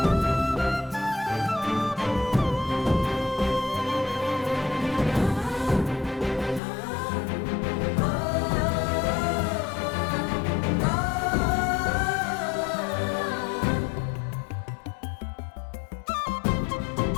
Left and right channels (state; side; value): drops out; right; at 6.6 s